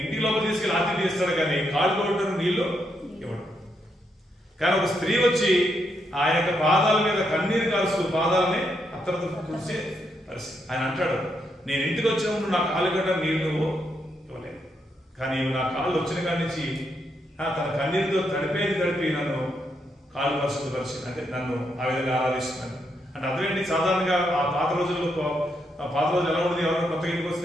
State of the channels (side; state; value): both; normal; correlation 0.79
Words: ఇంటి లోపల తీసుకెళ్ళి ఆతిథ్యం ఇస్తాడు, కానీ కాళ్ళు కొట్టడం నీళ్లు ఇవ్వడు. కానీ ఒక స్త్రీ వచ్చి ఆ యొక్క పాదాల మీద కన్నీరు కాల్స్తూ పాదాలని అత్తరతో కూర్చే పరిస్థితి. ఆయన అంటాడు, నేను ఇంటికి వచ్చినప్పుడు నా కాళ్ళు గడ్డ నీళ్లు ఇవ్వలేదు, కానీ నా కాళ్ళు వచ్చిన కాడి నుంచి తన కన్నీరుతో తడిపి నన్ను కాళ్ళు పరిశుద్ధపరిచి, అంటే నన్ను ఆ విధంగా ఆరాధిస్తున్నాను అంటే అర్థం ఏంటి? సాధారణంగా ఆ పాత రోజుల్లో, పాత రోజులు ఎలా ఉండేది? ఎవరైనా కొత్తగా ఇంటికి